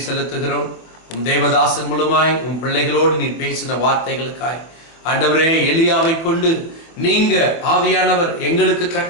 செலுத்துகிறோம். உம் தேவதாசன் மூலமாய் உம் பிள்ளைகளோடு நீ பேசின வார்த்தைகளுக்காய் ஆண்டவரே, எலியாவை கொண்டு நீங்க ஆவியானவர் எங்களுக்கு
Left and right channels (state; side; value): late; right; 25 ms